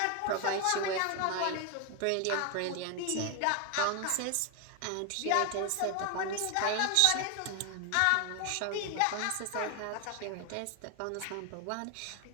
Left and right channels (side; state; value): both; different; correlation 0.01